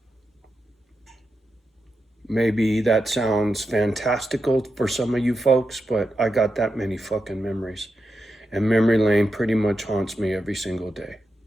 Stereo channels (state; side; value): normal; both; correlation 0.88